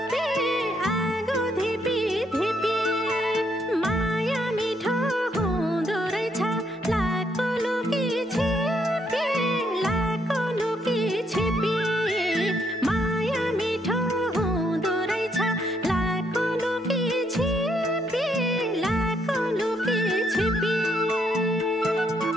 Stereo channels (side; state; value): both; normal; correlation 0.73